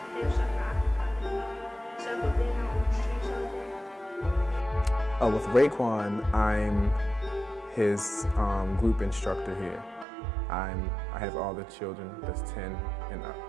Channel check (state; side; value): drops out; left; at 10.1 s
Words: have something I can do, instead of being out on the streets all day. With Raekwon, I'm his group instructor here. I have all the children that's 10 and